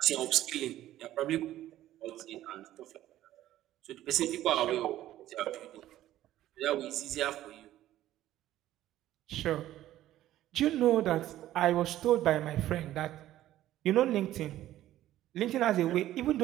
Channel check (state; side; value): quieter; left; 13.7 dB